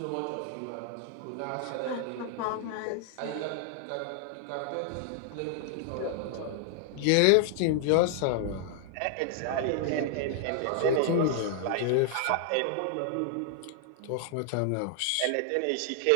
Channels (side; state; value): both; different; correlation 0.00